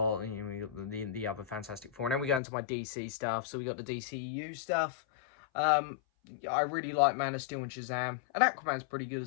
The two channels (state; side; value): drops out; right; at 2.4 s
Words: the other Fantastic Four. And then we go into my DC stuff. So we got the DCU stuff. I really like Man of Steel and Shazam. And Aquaman's pretty good